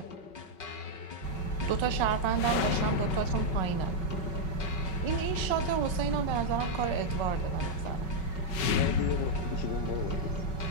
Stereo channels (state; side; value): late; right; 5.3 ms